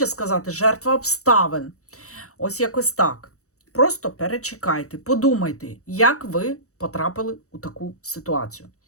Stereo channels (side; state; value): right; late; 0.65 ms